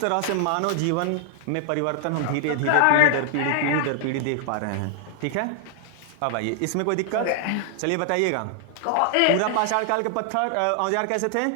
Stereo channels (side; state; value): both; different; correlation 0.00